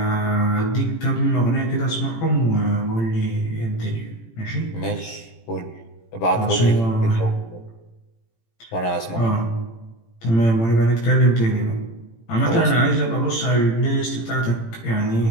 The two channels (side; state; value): right; late; 18 ms